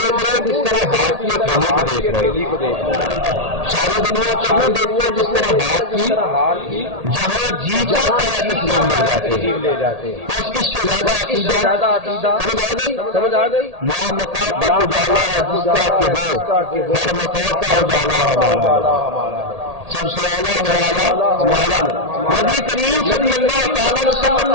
رہے ہیں جس طرح ہاتھ کی ہتھیلی کو دیکھ رہے ہیں، ساری دنیا کو یوں دیکھتے ہیں جس طرح ہاتھ کی، جہاں جی چاہتا ہے تشریف لے جاتے ہیں۔ بس اس سے زیادہ عقیدہ سمجھ آ گئی؟ لا مکان تک اجالا ہے جس کا کہ وہ ہر مکان کا اجالا ہمارا نبی، سب سے اولا ہو اعلیٰ ہمارا نبی کریم صلی اللہ تعالی علیہ وسلم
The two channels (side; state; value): left; late; 1.8 ms